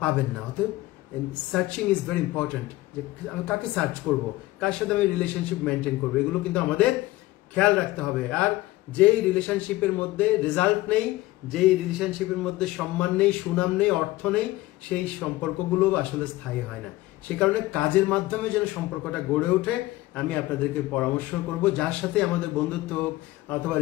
পাবেন না। অতএব সার্চিং ইজ ভেরি ইম্পর্টেন্ট, যে আমি কাকে সার্চ করব, কার সাথে আমি রিলেশনশিপ মেনটেন করবো, এগুলো কিন্তু আমাদের খেয়াল রাখতে হবে। আর যেই রিলেশনশিপের মধ্যে রেজাল্ট নেই, যেই রিলেশনশিপের মধ্যে সম্মান নেই, সুনাম নেই, অর্থ নেই, সেই সম্পর্কগুলো আসলে স্থায়ী হয় না। সে কারণে কাজের মাধ্যমে যেন সম্পর্কটা গড়ে ওঠে, আমি আপনাদেরকে পরামর্শ করব যার সাথে আমাদের বন্ধুত্ব হোক অথবা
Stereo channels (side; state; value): right; quieter; 18.1 dB